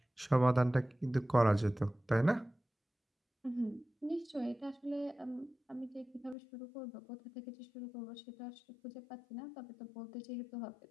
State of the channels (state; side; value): drops out; right; at 6.4 s